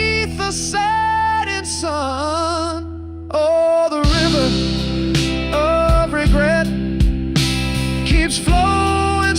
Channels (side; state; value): both; identical; correlation 1.00